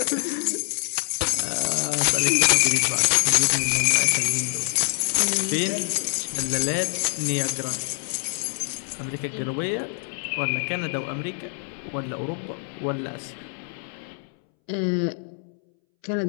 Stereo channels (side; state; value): right; silent; 62 dB below the other